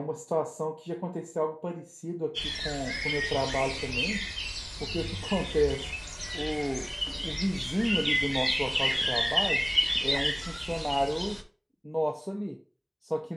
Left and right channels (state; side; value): identical; both; correlation 1.00